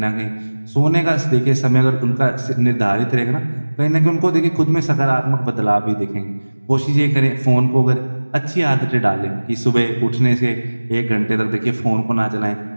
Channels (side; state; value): both; inverted; correlation -1.00